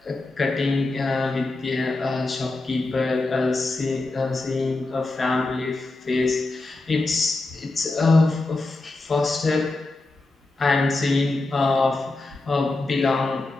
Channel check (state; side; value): quieter; right; 3.2 dB